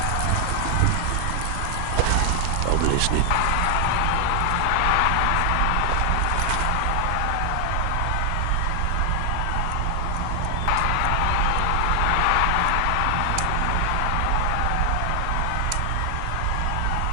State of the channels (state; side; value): different; both; correlation 0.00